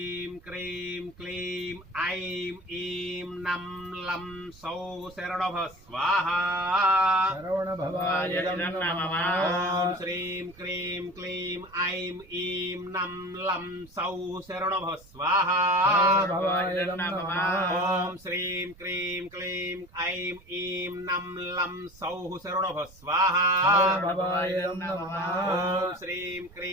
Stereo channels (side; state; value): right; noise; rumble, 24 dB below the sound